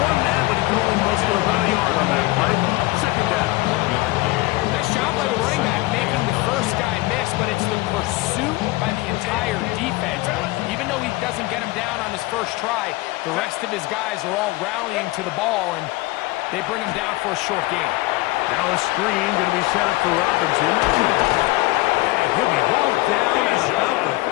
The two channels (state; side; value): quieter; right; 20.6 dB